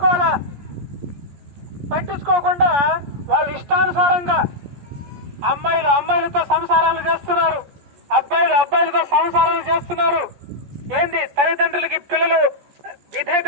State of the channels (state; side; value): late; left; 14 ms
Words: పట్టించుకోకుండా వాళ్ళు ఇష్టానుసారంగా అమ్మాయిలతో సంసారాలు చేస్తున్నారు, అబ్బాయిలతో సంసారాలు చేస్తున్నారు. ఏంది, తల్లిదండ్రులకి పిల్లలు విధేయత